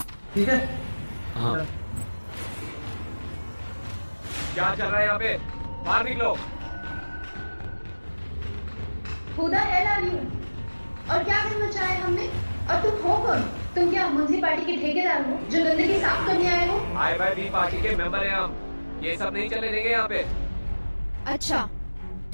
ठीक है? हाँ। क्या चल रहा है यहाँ पे? बाहर निकलो। खुदा है यू और क्या करना चाहे हमने? और तुम हो कौन? तुम क्या म्युनिसिपैलिटी के ठेकेदार हो जो गंदगी साफ करने आए हो? IYB पार्टी के मेंबर हैं हम, ये सब नहीं चले देंगे यहाँ पे। अच्छा,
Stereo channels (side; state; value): both; inverted; correlation -1.00